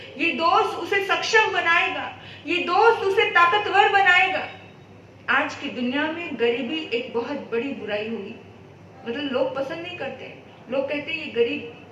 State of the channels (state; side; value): identical; both; correlation 1.00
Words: ये दोस्त उसे सक्षम बनाएगा, ये दोस्त उसे ताकतवर बनाएगा। आज की दुनिया में गरीबी एक बहुत बड़ी बुराई हुई, मतलब लोग पसंद नहीं करते। लोग कहते हैं ये